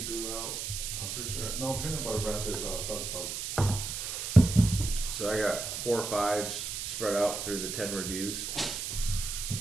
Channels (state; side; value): noise; right; hiss, 4 dB below the sound